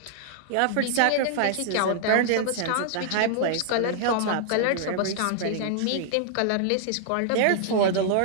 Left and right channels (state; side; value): different; both; correlation -0.01